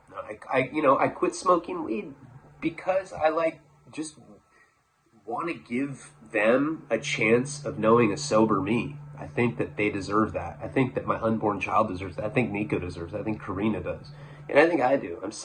I quit smoking weed because I just want to give them a chance of knowing a sober me. I think that they deserve that. I think that my unborn child deserves that. I think Nico deserves that. I think Karina does. And I think I do.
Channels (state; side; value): identical; both; correlation 1.00